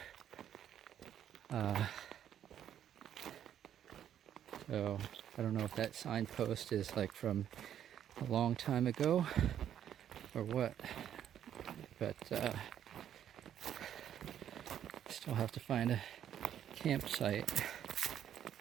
So I don't know if that signpost is like from a long time ago or what, but still have to find a campsite.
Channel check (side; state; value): left; quieter; 10.0 dB